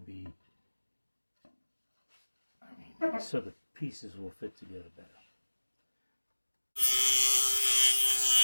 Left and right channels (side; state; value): both; inverted; correlation -1.00